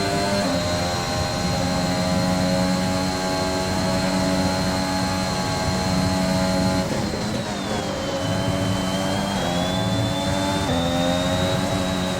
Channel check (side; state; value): both; identical; correlation 1.00